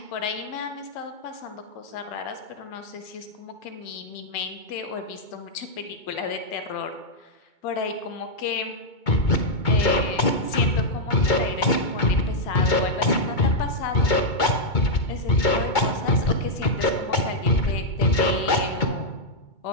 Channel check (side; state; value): right; late; 2.2 ms